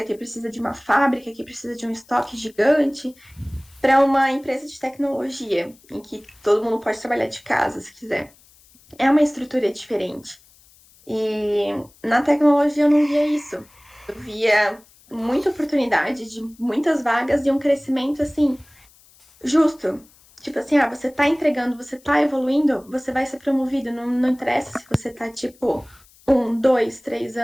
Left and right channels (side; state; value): left; noise; hiss, 28 dB below the sound